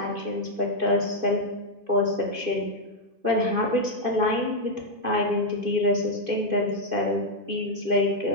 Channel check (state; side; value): late; left; 2.5 ms